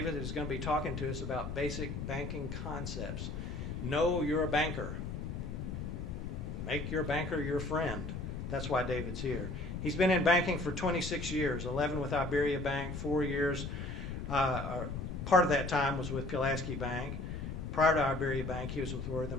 is going to be talking to us about basic banking concepts. Know you're a banker. Make your banker your friend. That's why David's here. He's been in banking for 26 years, 11 with Iberia Bank, 4 years. Part of that time was with Pulaski Bank. Prior to Iberia Bank, he was with Worthing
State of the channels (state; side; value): noise; left; rumble, 5 dB below the sound